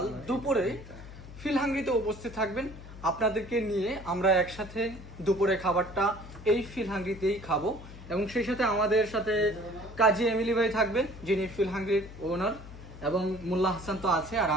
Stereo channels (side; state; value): left; noise; hum, 15 dB below the sound